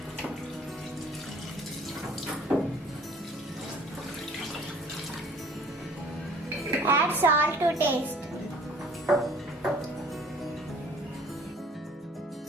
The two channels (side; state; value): both; normal; correlation 0.53